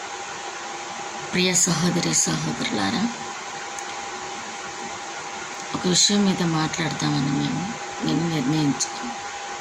ప్రియ సహోదరి సహోదరులారా, ఒక విషయం మీద మాట్లాడతామని నేను నిర్ణయించుకుని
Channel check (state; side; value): identical; both; correlation 1.00